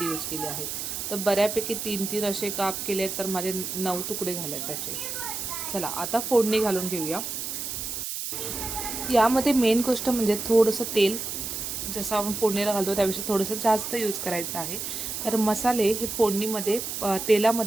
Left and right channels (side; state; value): right; noise; hiss, 5 dB below the sound